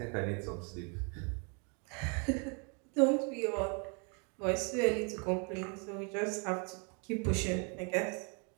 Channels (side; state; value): left; quieter; 36.6 dB